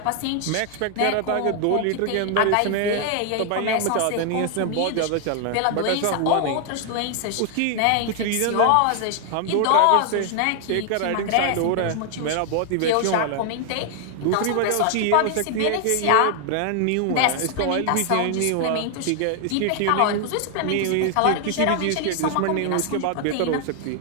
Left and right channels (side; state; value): both; different; correlation 0.00